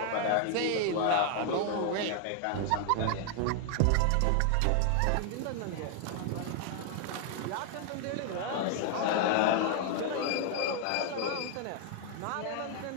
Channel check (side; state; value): both; different; correlation 0.00